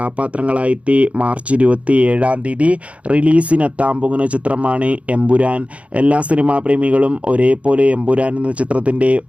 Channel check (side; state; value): left; late; 0.064 ms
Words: മാർച്ച് 27 റിലീസിനെത്താൻ പോകുന്ന ചിത്രമാണ് എമ്പുരാൻ. എല്ലാ സിനിമാ പ്രേമികളും ഒരേപോലെ എമ്പുരാൻ എന്ന ചിത്രത്തിൻ്റെ